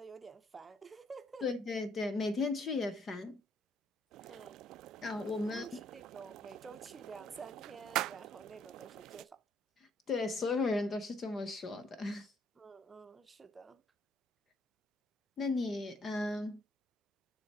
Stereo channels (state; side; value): normal; both; correlation 0.67